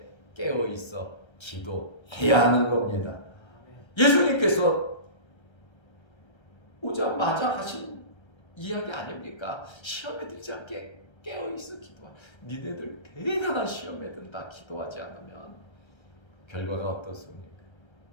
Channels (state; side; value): late; right; 1.3 ms